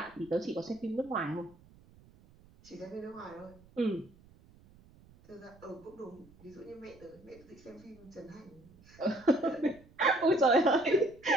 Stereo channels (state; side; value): noise; right; rumble, 25 dB below the sound